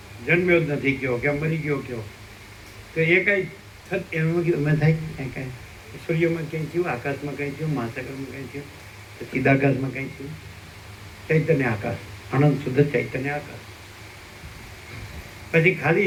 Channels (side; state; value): both; identical; correlation 1.00